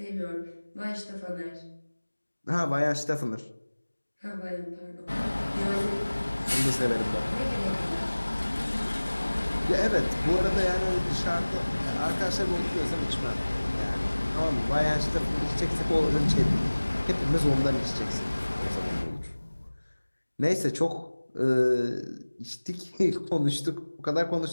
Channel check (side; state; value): both; inverted; correlation -1.00